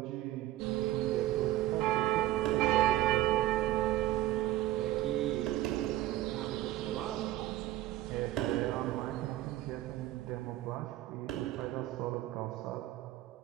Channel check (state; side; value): quieter; left; 14.9 dB